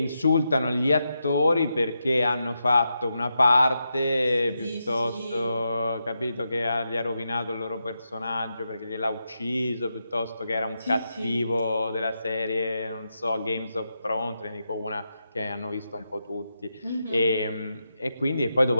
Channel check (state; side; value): inverted; both; correlation -0.86